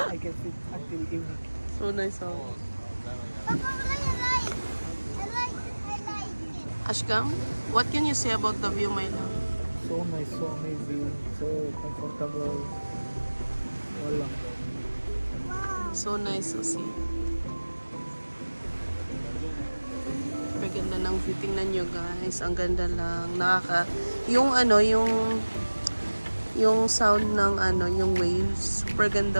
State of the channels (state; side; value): inverted; both; correlation -1.00